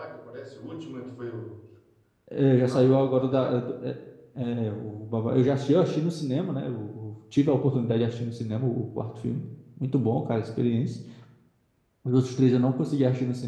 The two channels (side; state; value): both; identical; correlation 1.00